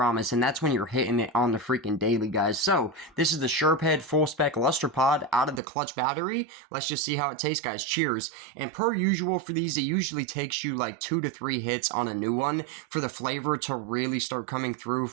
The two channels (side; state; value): left; drops out; at 5.6 s